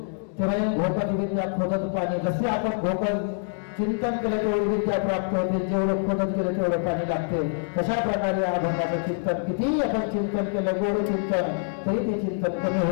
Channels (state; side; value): silent; right; 61 dB below the other